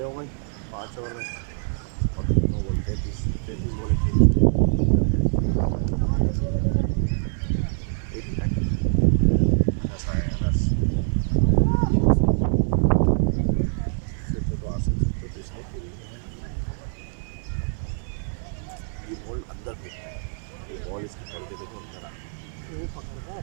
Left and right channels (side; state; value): left; silent; digital silence